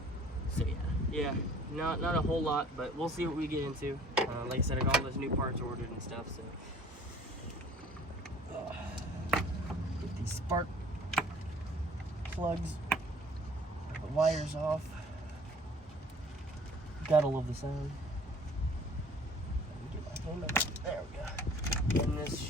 So yeah, not a whole lot, but we'll see what we get into. Like I said, I got all those new parts ordered and stuff, so get these spark plugs, the wires off. Gotta love the sound. Get my hand up. There we go. And this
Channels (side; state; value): both; normal; correlation 0.52